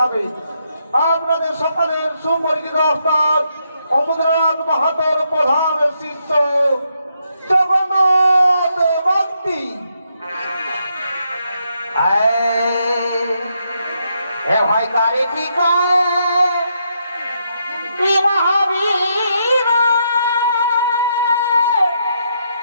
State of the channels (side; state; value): both; inverted; correlation -0.78